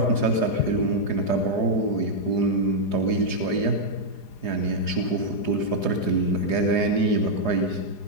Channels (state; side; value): late; right; 4.9 ms